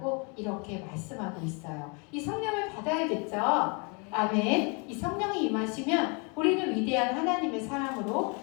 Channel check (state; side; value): quieter; right; 33.7 dB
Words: 이렇게 말씀하고 있어요. 이 성령을 받아야겠죠? 아멘. 이 성령이 임하시면 우리는 위대한 하나님의 사람으로